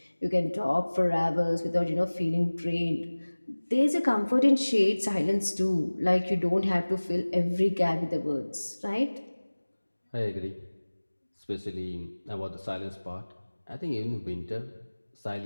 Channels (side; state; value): both; inverted; correlation -1.00